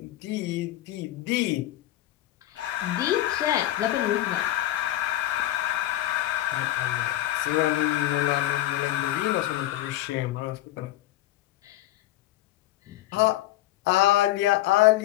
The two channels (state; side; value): quieter; right; 14.6 dB